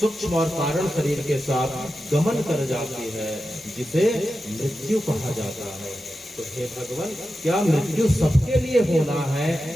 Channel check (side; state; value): both; normal; correlation 0.91